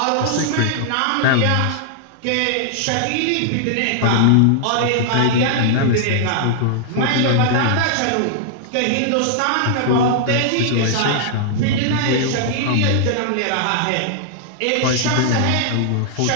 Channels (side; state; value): both; different; correlation -0.01